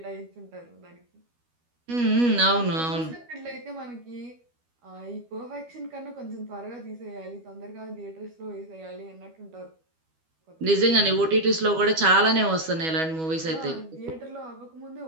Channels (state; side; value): late; left; 12 ms